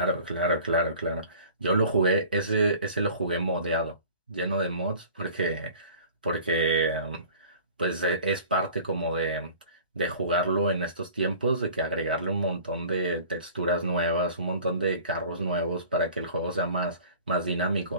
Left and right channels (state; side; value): inverted; both; correlation -0.46